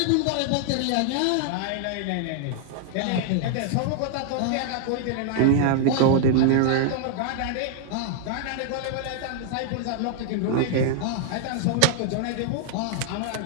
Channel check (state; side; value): different; both; correlation -0.01